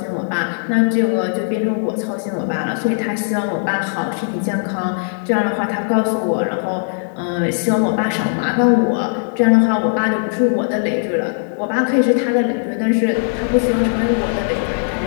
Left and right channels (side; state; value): right; silent; digital silence